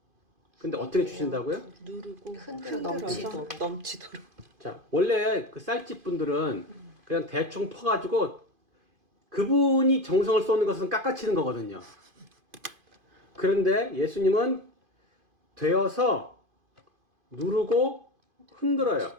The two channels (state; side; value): late; left; 2.5 ms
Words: 근데 어떻게 주신다고요? 누르고 흔들어 흔들어서 넘치도록. 자, 원래 그 쌀집 분들은 그냥 대충 퍼가지고 그분이 정성을 쏟는 것은 깎아치는 거거든요. 그런데 예수님은 되어서 누르고 흔들어요.